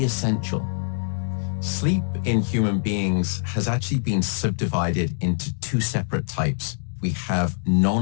essential. Sleep in human beings has actually been subdivided into two separate types. We have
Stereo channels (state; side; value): silent; right; digital silence